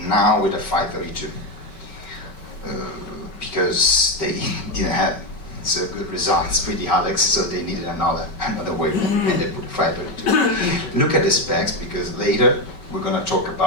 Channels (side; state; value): right; late; 5.3 ms